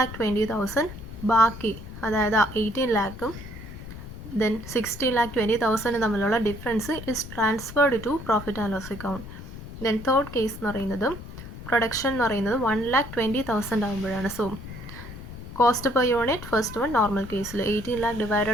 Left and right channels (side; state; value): left; noise; rumble, 12 dB below the sound